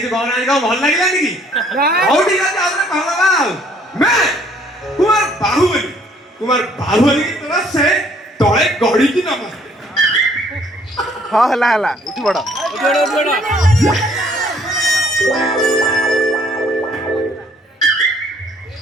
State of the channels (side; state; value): both; normal; correlation 0.62